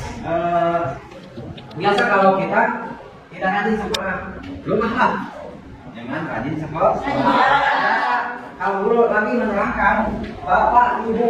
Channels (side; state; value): both; identical; correlation 1.00